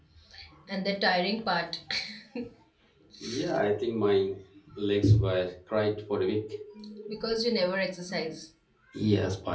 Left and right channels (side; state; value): both; identical; correlation 1.00